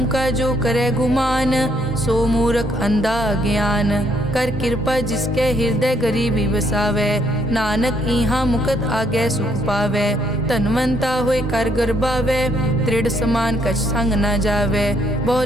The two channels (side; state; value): both; normal; correlation 0.70